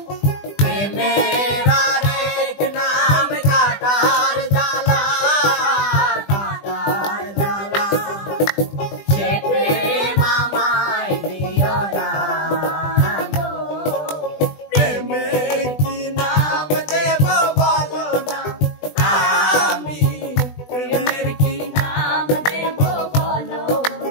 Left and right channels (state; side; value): late; right; 20 ms